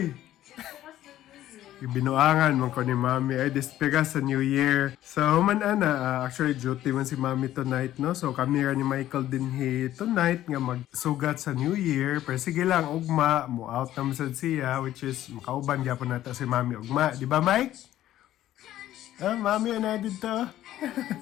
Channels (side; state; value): right; quieter; 13.2 dB